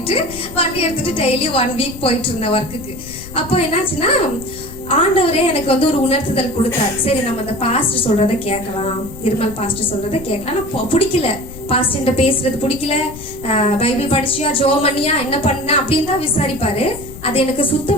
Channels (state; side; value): noise; left; rumble, 14 dB below the sound